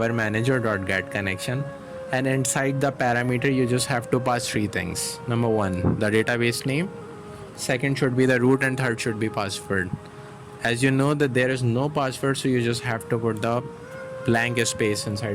manager.getConnection, and inside the parameter you just have to pass three things. Number one, the database name, second should be the root, and third should be password. As you know that there is no password, so you just have to put the blank space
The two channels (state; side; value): identical; both; correlation 1.00